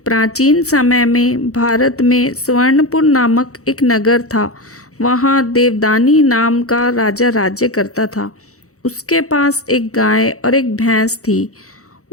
प्राचीन समय में भारत में स्वर्णपुर नामक एक नगर था। वहाँ देवदानी नाम का राजा राज्य करता था। उसके पास एक गाय और एक भैंस थी।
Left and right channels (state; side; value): late; right; 0.65 ms